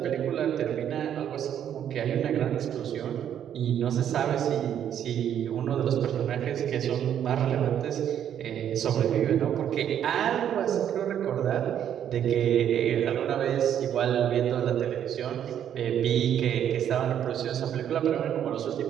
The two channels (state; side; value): quieter; left; 9.7 dB